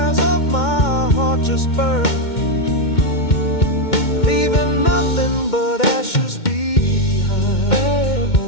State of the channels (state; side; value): late; right; 2.2 ms